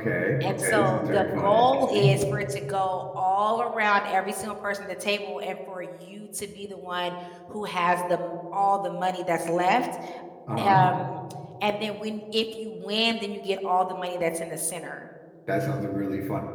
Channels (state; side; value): identical; both; correlation 1.00